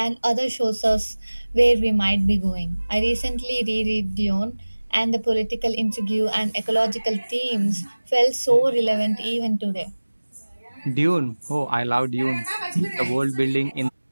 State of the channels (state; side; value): inverted; both; correlation -1.00